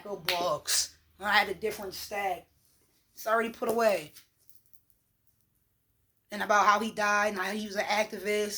of books. When I had a different stack. It's already put away. And about how he died and how he was an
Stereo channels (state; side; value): identical; both; correlation 1.00